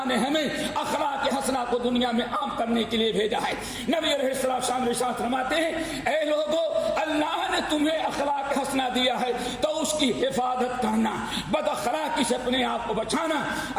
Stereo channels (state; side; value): identical; both; correlation 1.00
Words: نے ہمیں اخلاق کے حسنہ کو دنیا میں عام کرنے کے لیے بھیجا ہے۔ نبی علیہ السلام ارشاد فرماتے ہیں، اے لوگوں، اللہ نے تمہیں اخلاق حسنہ دیا ہے تو اس کی حفاظت کرنا، بد اخلاقی سے اپنے آپ کو بچانا۔